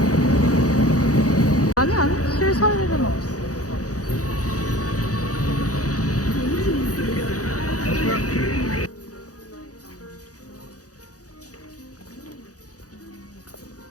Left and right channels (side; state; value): right; late; 0.67 ms